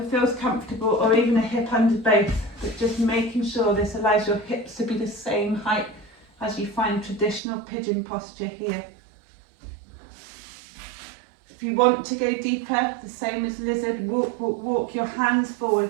feels comfortable, or even a hip under both, but just making sure this allows your hips to be the same height as you find traditional pigeon posture here. If you want to go deeper, the same as lizard, walk your hands forward,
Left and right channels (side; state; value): left; drops out; at 7.4 s